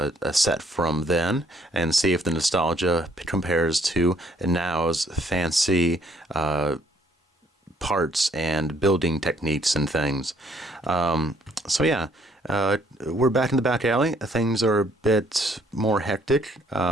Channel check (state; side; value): normal; both; correlation 0.65